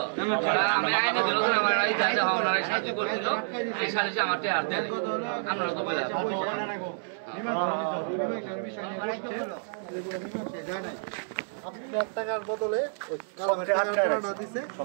আমি আইনে বেরো আমার সাহায্য করছিল, এই সালিশে আমার হাত দেন আপনারা তো বলে টাকার বদলে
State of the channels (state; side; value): silent; left; digital silence